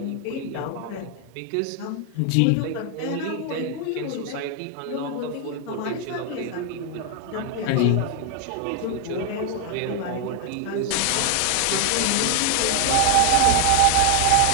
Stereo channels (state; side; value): different; both; correlation 0.00